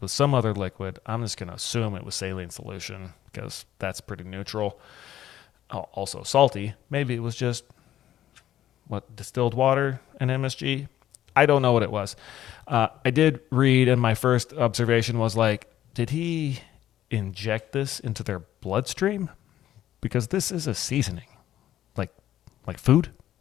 with some other liquid. I'm just going to assume it was saline solution because that's pretty neutral. Also salty. Maybe it was just distilled water and MSG. I don't know what it was. I did read, and my first observation was like, did he inject this into their bloodstream? Because this is a seasoning, like food.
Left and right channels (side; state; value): right; quieter; 12.3 dB